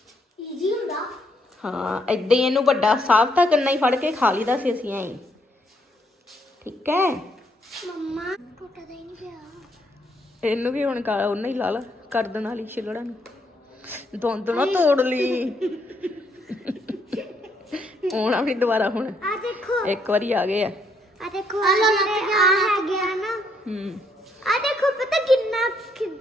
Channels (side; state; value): both; normal; correlation 0.73